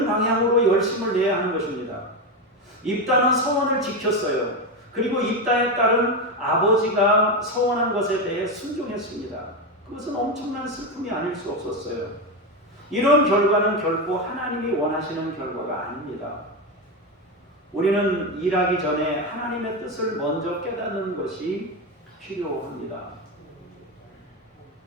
방향으로 열심을 내야 하는 것입니다. 입다는 서원을 지켰어요. 그리고 입다의 딸은 아버지가 서원한 것에 대해 순종했습니다. 그것은 엄청난 슬픔이 아닐 수 없었어요. 이런 결과는 결코 하나님이 원하시는 결과가 아닙니다. 우리는 일하기 전에 하나님의 뜻을 먼저 깨닫는 것이 필요합니다.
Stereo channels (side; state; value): both; normal; correlation 0.13